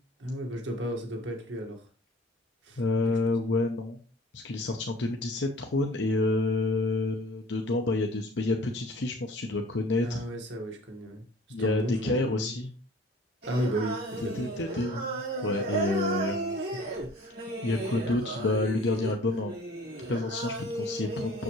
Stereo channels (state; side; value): normal; both; correlation 0.48